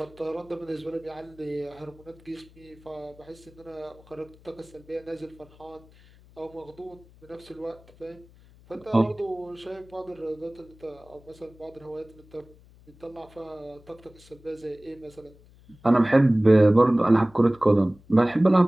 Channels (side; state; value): left; noise; hum, 26 dB below the sound